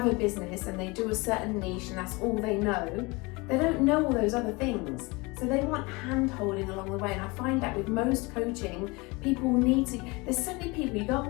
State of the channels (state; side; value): quieter; right; 25.6 dB